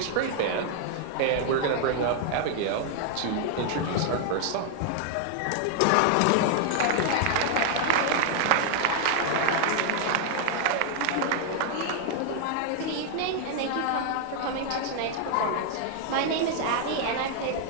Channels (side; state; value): both; different; correlation 0.00